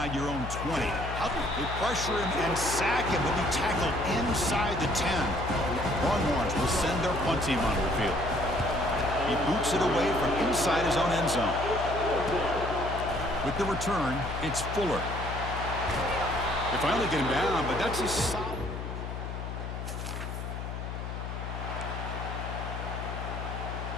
your own 20. They pressure him and sack him. He'll be tackled inside the 10. Longhorns will send their punt team onto the field. He boots it away from inside his own end zone. With the return, it's Fuller. They finally get him down, but that's a solid.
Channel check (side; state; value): left; noise; hum, 6 dB below the sound